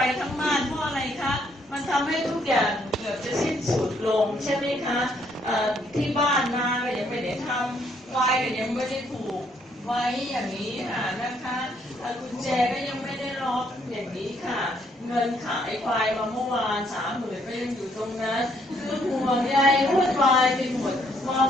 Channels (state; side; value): normal; both; correlation 0.70